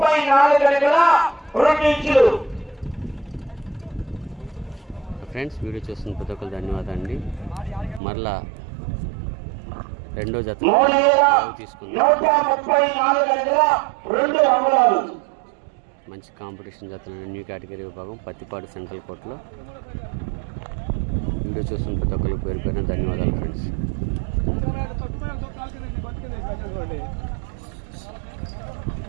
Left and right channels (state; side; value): drops out; left; at 8.0 s